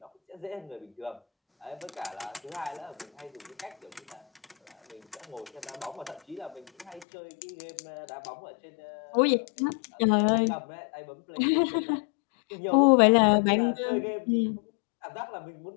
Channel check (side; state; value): right; drops out; at 7.1 s